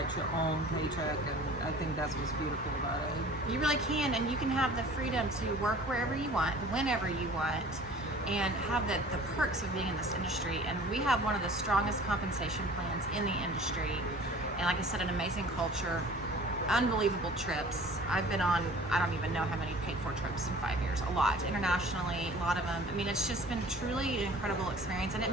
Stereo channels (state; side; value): normal; both; correlation 0.47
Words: your own paycheck, and I think that's what's beautiful about it. You really can, and you can have the freedom to work wherever you want, whenever you want, and have the perks of being in this industry. And we have one of the strongest compensation plans in the industry, and like I said, an amazing culture, unbelievable trips. I've been on, I don't even know how many paid for trips in 5 years, a lot, internationally, a lot of them. I mean, it's just been truly an incredible experience, and it